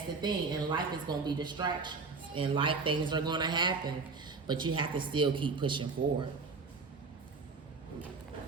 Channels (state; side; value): quieter; left; 4.4 dB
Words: the thing. In life, it's going to be distractions. In life, things are going to happen, but you have to still keep pushing forward.